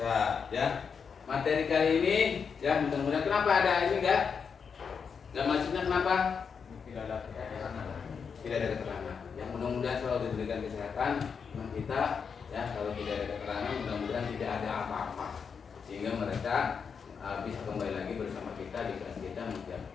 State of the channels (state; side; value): quieter; right; 6.2 dB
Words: ya. Materi kali ini, ya mudah-mudahan kenapa ada ini enggak? Nggak maksudnya kenapa? Tidak ada keterangan. Tidak ada keterangan. Yang mudah-mudahan selalu diberikan kesehatan teman kita, ya. Kalau tidak ada keterangan, mudah-mudahan tidak ada apa-apa, sehingga mereka bisa kembali lagi bersama kita di kelas kita